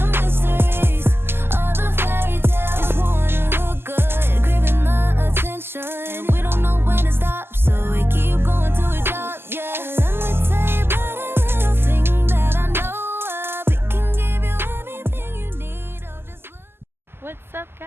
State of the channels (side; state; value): left; late; 0.11 ms